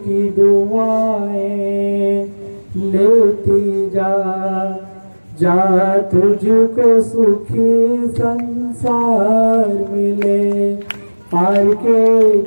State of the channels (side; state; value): both; inverted; correlation -1.00